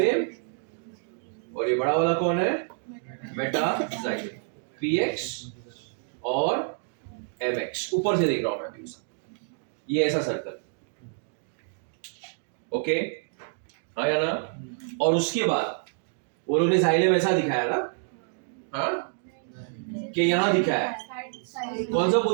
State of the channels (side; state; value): left; silent; 59 dB below the other